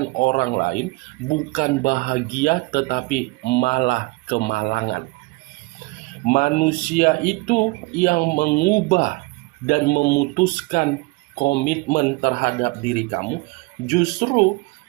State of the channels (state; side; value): quieter; left; 24.2 dB